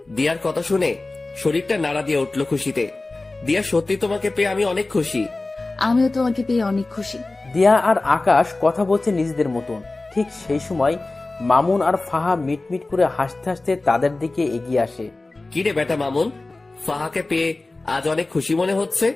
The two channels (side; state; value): right; quieter; 3.2 dB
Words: দিয়ার কথা শুনে শরীরটা নাড়া দিয়ে উঠলো খুশিতে। দিয়া, সত্যি তোমাকে পেয়ে আমি অনেক খুশি। আমিও তোমাকে পেয়ে অনেক খুশি। দিয়া আর আকাশ কথা বলছে নিজেদের মতন। ঠিক সেই সময় মামুন আর ফাহা মিটমিট করে হাসতে হাসতে তাদের দিকে এগিয়ে আসে। কি রে বেটা মামুন, ফাহাকে পেয়ে আজ অনেক খুশি মনে হচ্ছে?